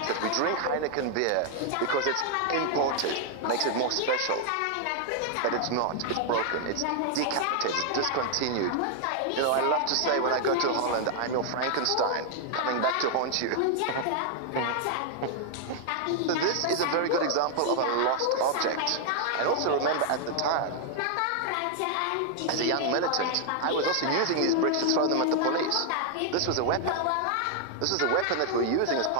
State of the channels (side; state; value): both; different; correlation 0.00